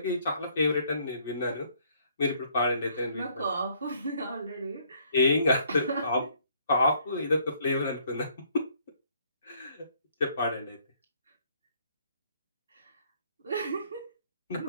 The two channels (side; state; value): both; inverted; correlation -0.65